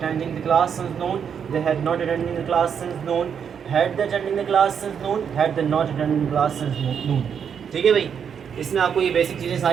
the class since noon, they had not attending the class since noon, had they attending the class since noon, had they not attending the class since noon, ठीक है भाई। इसमें आपको ये basic चीज़ें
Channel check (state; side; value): quieter; left; 7.5 dB